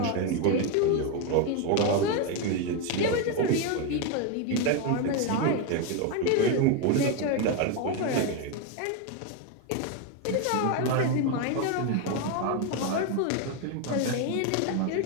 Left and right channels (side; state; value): both; different; correlation 0.02